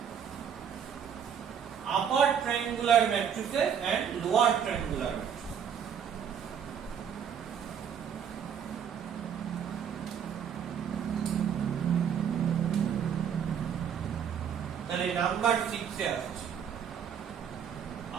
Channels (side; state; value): left; quieter; 8.1 dB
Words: upper triangular matrices and lower triangular matrix. তাহলে নাম্বার 6 এ আসছে